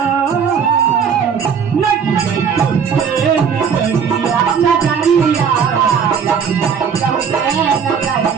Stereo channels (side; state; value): left; quieter; 6.9 dB